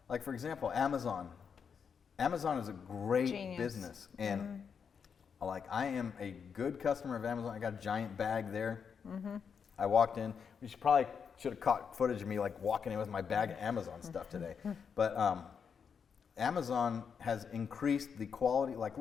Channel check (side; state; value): right; quieter; 6.6 dB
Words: Like, for example, Amazon. Amazon is a great business, and like, I am a good customer of Amazon. I got a giant bag there. I walked in. We probably should have caught footage of me like walking in with my bag of Amazon stuff today. But Amazon has increased the quality. Like,